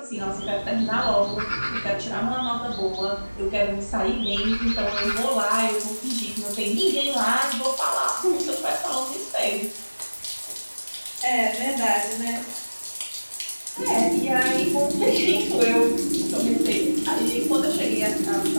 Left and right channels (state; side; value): inverted; both; correlation -1.00